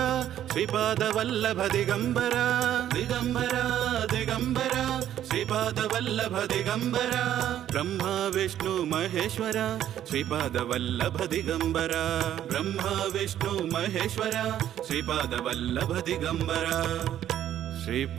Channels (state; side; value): quieter; left; 11.3 dB